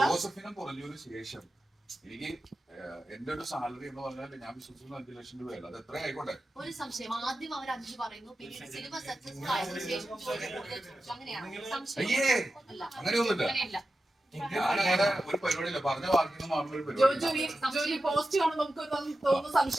ജോസഫിനെ കുറഞ്ഞതിന് ശേഷം എനിക്ക് എന്റെ ഒരു സാലറി എന്ന് പറഞ്ഞാൽ ഞാൻ വിശ്വസിക്കുന്ന 5 ലക്ഷം രൂപയല്ല. അത് എത്ര ആയിക്കോട്ടെ. ഒരു സംശയം, ആദ്യം അവർ 5 പറയുന്നു, പിന്നീട് സിനിമ സക്സസ്ഫുൾ ആയതിനു ശേഷം അയ്യേ, അങ്ങനെയൊന്നുമില്ല. ഞാനങ്ങനെ ഒരു പരിപാടിയില്ല. പറഞ്ഞ വാക്കിന് മാത്രം ഒരു പരിപാടി.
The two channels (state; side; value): normal; both; correlation 0.92